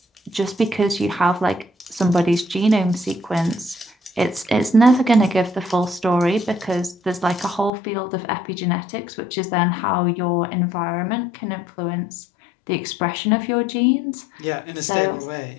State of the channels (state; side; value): drops out; right; at 7.7 s